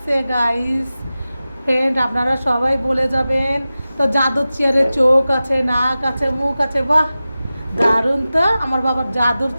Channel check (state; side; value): inverted; both; correlation -0.95